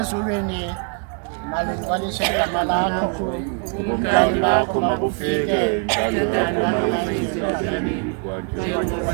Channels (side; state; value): left; quieter; 38.7 dB